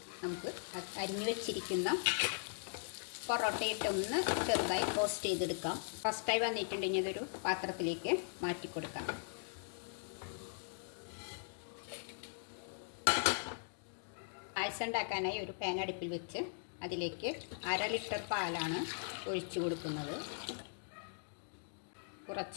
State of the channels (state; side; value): silent; right; digital silence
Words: നമുക്ക് അരിഞ്ഞു വെച്ചിരിക്കുന്ന പൊറോട്ട ഇട്ടൊന്ന് ചെറുതായി റോസ്റ്റ് ചെയ്തെടുക്കാം. റോസ്റ്റായി വന്നിട്ടുണ്ടെങ്കിൽ ഇതൊരു പാത്രത്തിലേക്ക് മാറ്റി കൊടുക്കാം. പായസം ഉണ്ടാക്കാനായി ഒരു പാൻ അടുപ്പിൽ വെച്ച് അതിലേക്ക് 1/2 ലിറ്റർ പാലാണ് ഒഴിച്ചു കൊടുക്കുന്നത്.